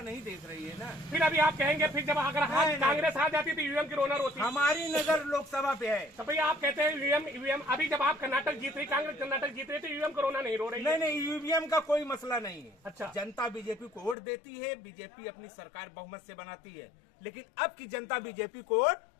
नहीं देख रही है ना। फिर अभी आप कहेंगे फिर जब अगर कांग्रेस आ जाती तो ईवीएम की रोनर होती। हमारी नजर लोकसभा पे है। तो भैया आप कहते हैं ईवीएम अभी जब आप कर्नाटक जीत रही, कांग्रेस कर्नाटक जीत रही, तो ईवीएम को रोना नहीं रो रही? नहीं, ईवीएम का कोई मसला नहीं है। अच्छा, जनता जनता बीजेपी को वोट देती है, बीजेपी अपनी सरकार बहुमत से बनाती है, लेकिन अब की जनता बीजेपी को वोट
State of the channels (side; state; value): right; drops out; at 14.2 s